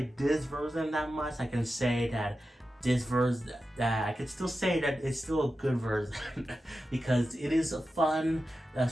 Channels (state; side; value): normal; both; correlation 0.92